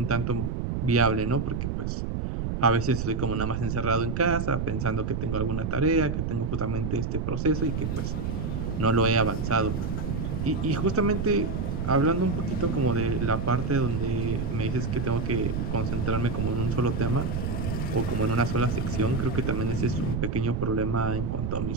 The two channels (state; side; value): noise; right; rumble, 2 dB below the sound